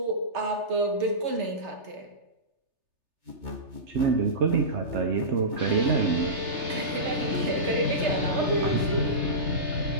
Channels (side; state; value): left; late; 3.3 ms